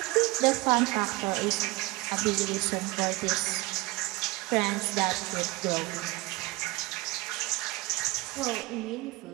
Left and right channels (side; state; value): left; quieter; 22.6 dB